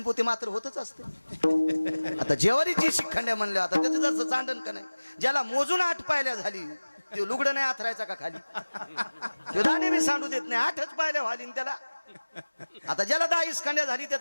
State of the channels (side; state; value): both; inverted; correlation -1.00